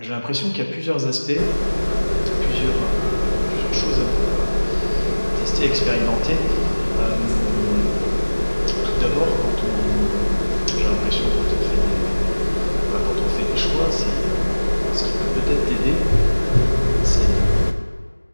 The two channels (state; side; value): inverted; both; correlation -1.00